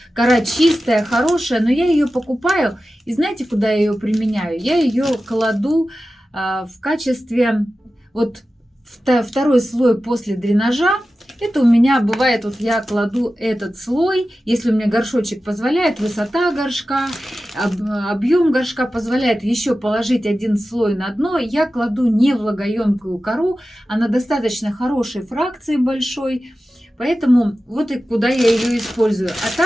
Кора чистая, хорошая, но я ее покупаю. И знаете, куда я ее применяю? Я ее кладу в качестве вот второй слой после дренажа. Это у меня бывает, вот я кладу этот слой, если у меня горшочек позволяет, высота горшка, объем горшка позволяет еще положить один слой на дно, я кладу не влагоемкую кору, она достаточно хорошей фракции большой, поэтому вот и куда я ее использую. А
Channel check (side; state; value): both; normal; correlation 0.94